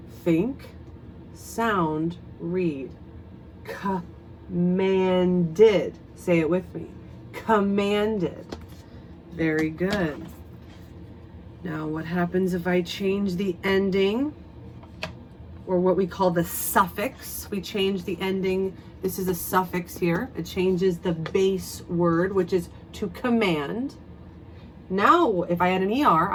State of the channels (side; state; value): both; identical; correlation 1.00